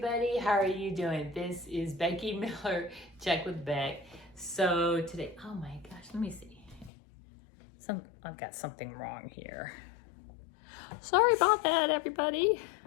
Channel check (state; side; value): drops out; right; at 6.9 s